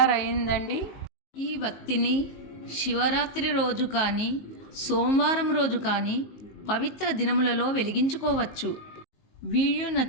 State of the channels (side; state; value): right; late; 19 ms